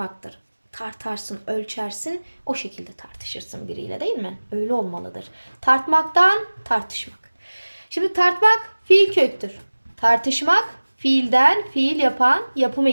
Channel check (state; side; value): inverted; both; correlation -1.00